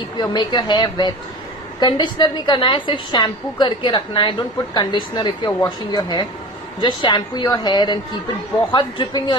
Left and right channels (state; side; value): normal; both; correlation 0.35